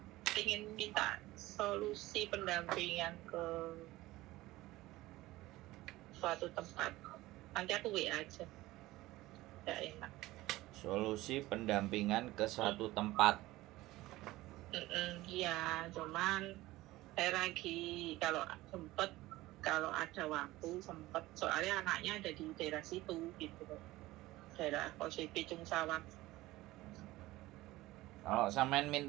ingin minta solusi pendampingan ke suatu tempat. Nanti aku WA aja. Tidak enak. Solusi pendampingan ke suatu tempat. Iya, cuman saya lagi kalau ada waktu sempet, soalnya anaknya ada di daerah situ gitu, daerah Kose Picung Sawat. Kalau sampean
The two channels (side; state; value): left; quieter; 18.0 dB